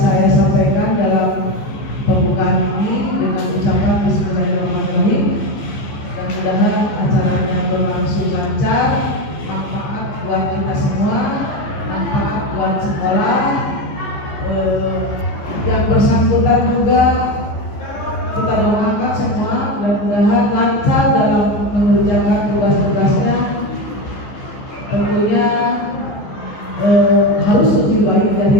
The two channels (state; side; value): late; right; 14 ms